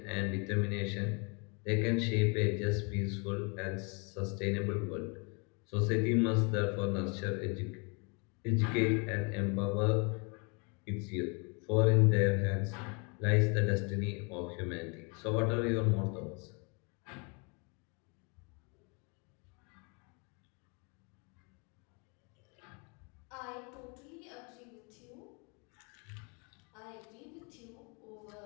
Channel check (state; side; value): quieter; right; 33.4 dB